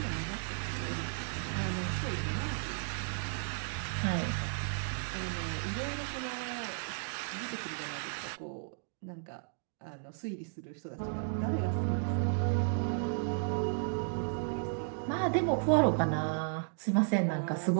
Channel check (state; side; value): silent; left; digital silence